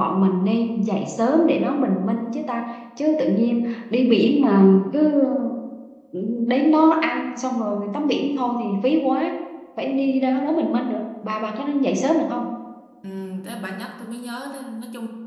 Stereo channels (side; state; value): both; identical; correlation 1.00